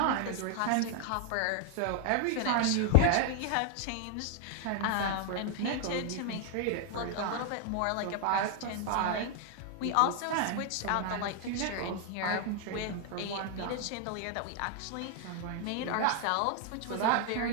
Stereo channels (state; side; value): different; both; correlation 0.00